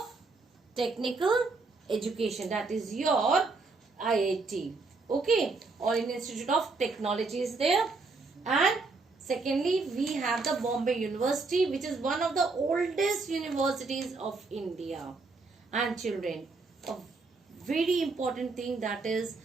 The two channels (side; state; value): left; quieter; 3.9 dB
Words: Technical Education, that is your IIT. Okay, All India Institute of Technology is there. And secondly, we have the Bombay University, which is one of the oldest universities of India. And children, a very important thing that is